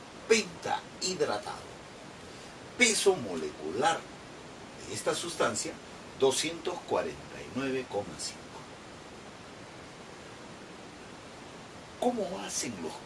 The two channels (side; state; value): both; identical; correlation 1.00